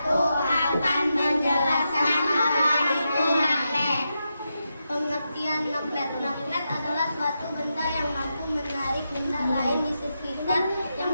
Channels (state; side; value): inverted; both; correlation -0.87